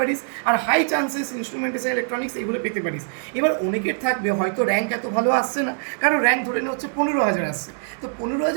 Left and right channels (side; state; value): left; silent; digital silence